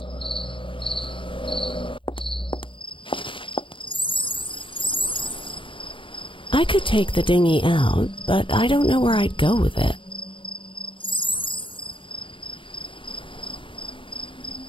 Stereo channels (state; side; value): late; right; 0.25 ms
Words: I could take the dinghy out, but I don't know where I'd go with it.